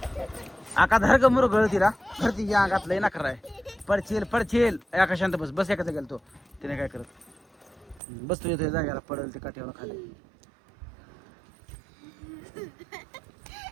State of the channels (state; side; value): drops out; left; at 8.0 s